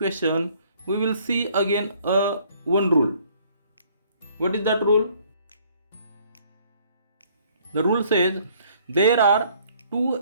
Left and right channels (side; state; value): both; inverted; correlation -0.61